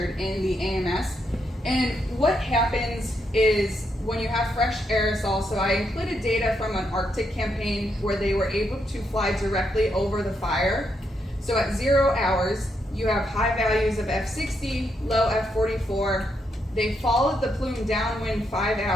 in the AMS. And what happens is when you have fresh aerosol, so I included data from an Arctic campaign where they were able to fly directly over the fire. So at 0 hours, you have high values of F60, low F44. They followed the plume downwind 5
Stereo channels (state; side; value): normal; both; correlation 0.79